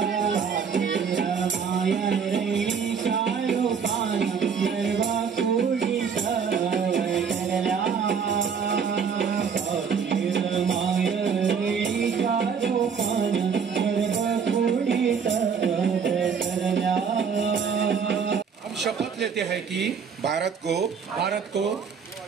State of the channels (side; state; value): left; quieter; 6.4 dB